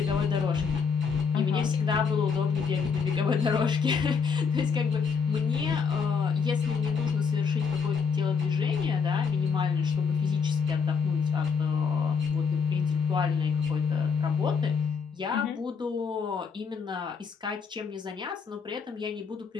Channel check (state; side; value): quieter; right; 5.7 dB